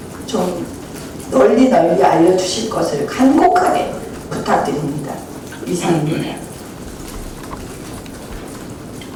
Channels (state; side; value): identical; both; correlation 1.00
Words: 좀 널리 알려주실 것을 간곡하게 부탁드립니다. 이상입니다.